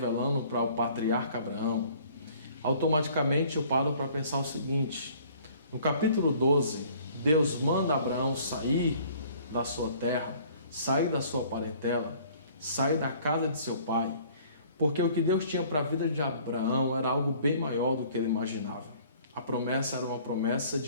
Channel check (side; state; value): both; inverted; correlation -0.54